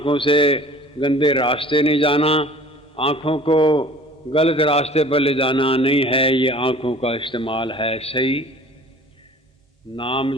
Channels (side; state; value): both; normal; correlation 0.48